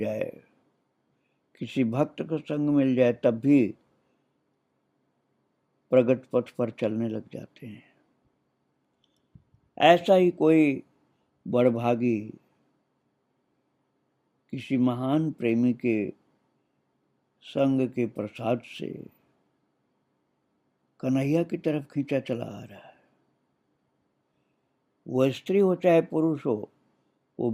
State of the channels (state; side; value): identical; both; correlation 1.00